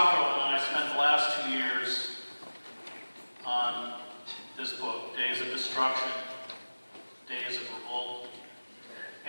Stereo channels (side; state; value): both; inverted; correlation -1.00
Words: and I spent the last 2 years on this book, Days of Destruction, Days of Revolt.